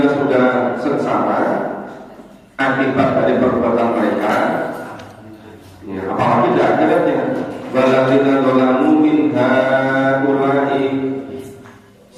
sudah sengsara akibat dari perbuatan mereka. Ya, apalagi di akhiratnya. Waladzina dzalamu min haula'i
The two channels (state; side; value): identical; both; correlation 1.00